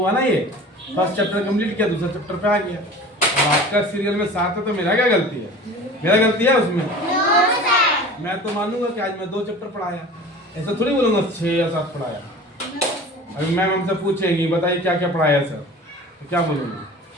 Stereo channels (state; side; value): normal; both; correlation 0.40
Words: ना, ये फर्स्ट चैप्टर कंप्लीट किया, दूसरा चैप्टर पे आ गया। और आपका सीरियल में 7 है तो मेरा क्या गलती है? मेरा गलती है उसमें? मैं तो मानूंगा कि आज मैं 2 चैप्टर पढ़ाया, ऐसा थोड़ी बोलूंगा 6 या 7 पढ़ाया। अभी मैम हमसे पूछेंगी बताइए क्या क्या पढ़ाया सर, तो क्या बोलूंगा?